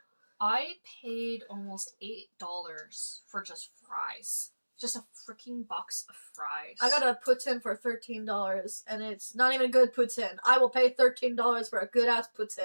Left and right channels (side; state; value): both; inverted; correlation -1.00